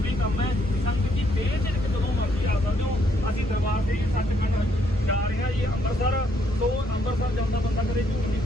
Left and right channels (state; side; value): normal; both; correlation 0.71